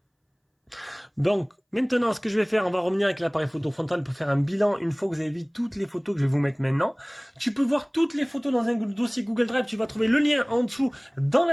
Donc, maintenant, ce que je vais faire, on va revenir avec l'appareil photo frontal pour faire un bilan une fois que vous avez vu toutes les photos que je vais vous mettre maintenant. Tu peux voir toutes les photos dans un dossier Google Drive. Tu vas trouver le lien en dessous dans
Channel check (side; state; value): both; identical; correlation 1.00